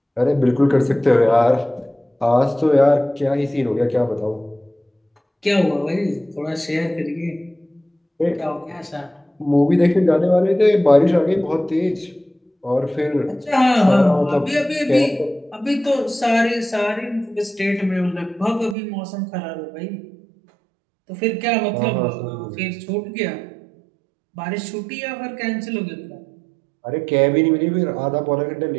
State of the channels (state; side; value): drops out; left; at 18.8 s